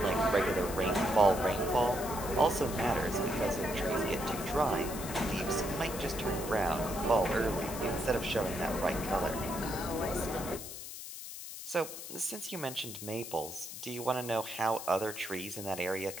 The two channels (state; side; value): noise; left; hiss, 10 dB below the sound